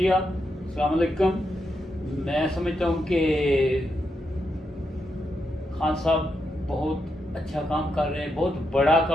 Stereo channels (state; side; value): normal; both; correlation 0.83